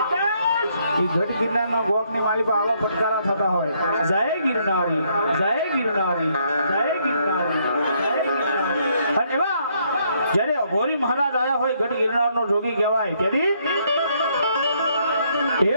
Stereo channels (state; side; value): inverted; both; correlation -0.71